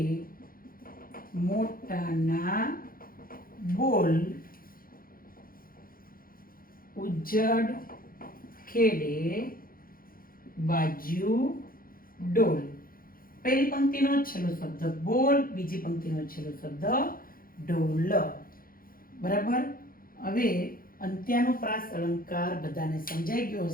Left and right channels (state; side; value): late; right; 0.42 ms